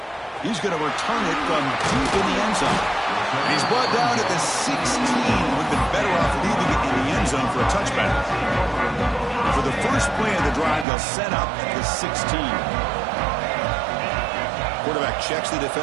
He's going to return it from deep in the end zone. And he's brought down at the 16. Would have been better off leaving it in the end zone for a touchback. For the first play of the drive, they'll set up at the 16. Quarterback checks the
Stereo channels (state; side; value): drops out; left; at 10.9 s